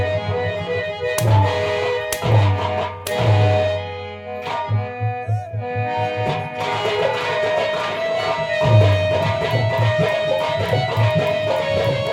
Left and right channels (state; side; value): identical; both; correlation 1.00